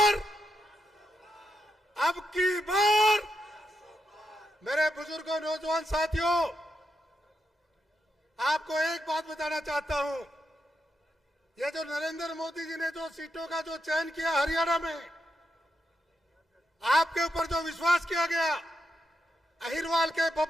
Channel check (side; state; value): both; normal; correlation 0.84